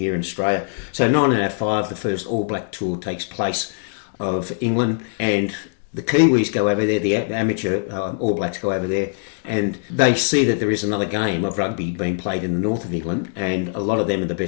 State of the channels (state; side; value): silent; right; digital silence